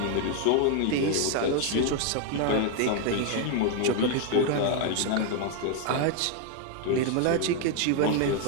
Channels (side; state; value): both; different; correlation 0.00